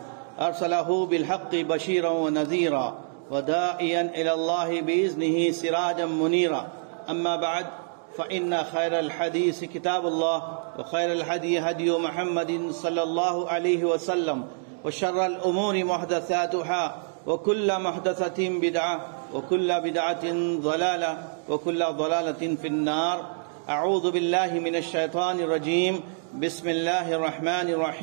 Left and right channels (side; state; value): left; silent; digital silence